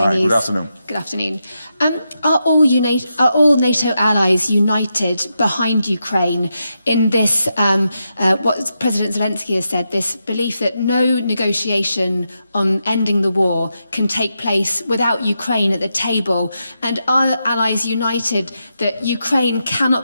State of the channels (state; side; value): inverted; both; correlation -0.86